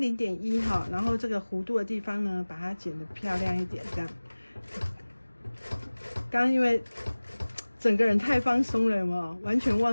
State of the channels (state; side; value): inverted; both; correlation -1.00